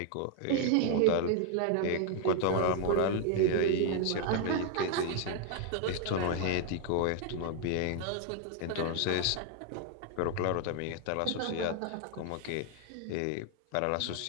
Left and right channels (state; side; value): different; both; correlation 0.00